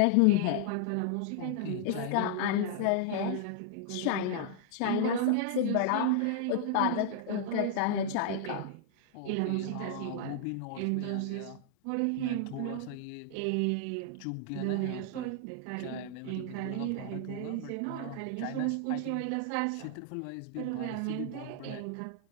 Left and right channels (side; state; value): both; different; correlation -0.01